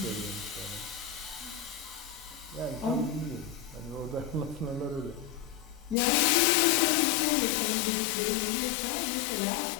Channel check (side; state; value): right; drops out; at 6.0 s